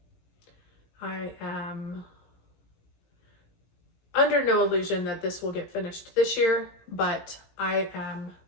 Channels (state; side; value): late; right; 18 ms